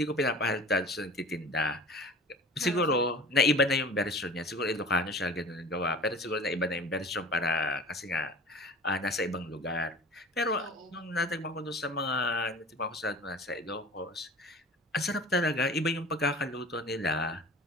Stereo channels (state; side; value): normal; both; correlation 0.40